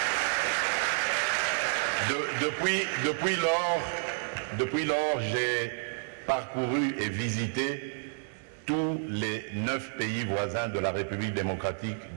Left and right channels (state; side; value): silent; left; digital silence